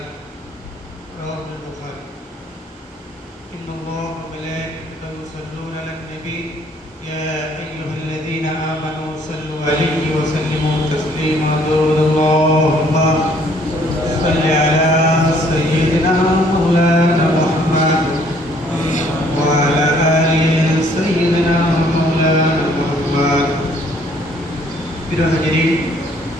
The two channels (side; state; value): both; normal; correlation 0.62